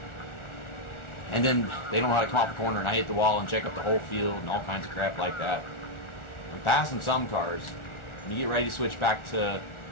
And then they don't know how to come off the corner and I hit the wall and check up the whole field and all kinds of crap like that. I'm passing some cars. When you get ready to switch back to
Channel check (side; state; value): right; late; 1.4 ms